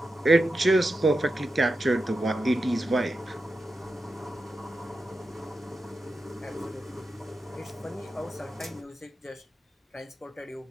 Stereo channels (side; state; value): both; normal; correlation 0.90